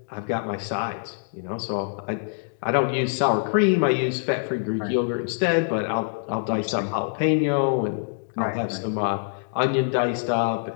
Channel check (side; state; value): right; silent; digital silence